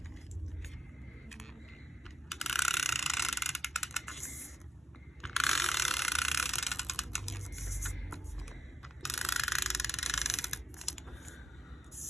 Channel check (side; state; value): both; normal; correlation 0.78